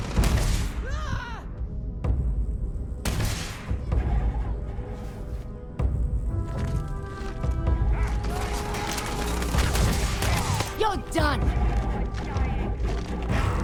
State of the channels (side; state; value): both; identical; correlation 1.00